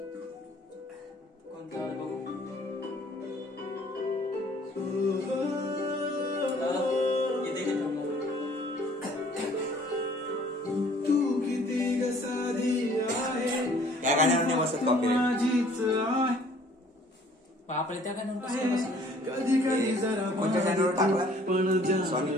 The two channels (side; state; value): both; normal; correlation 0.56